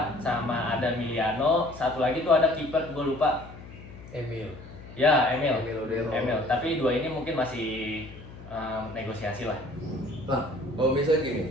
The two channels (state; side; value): noise; left; hum, 16 dB below the sound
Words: sama ada Miliano, satu lagi tuh ada kiper gua lupa. Emil. Ya, Emil. Emil Odero. Tapi 2 ini mungkin masih negosiasi lah. Nah, kalau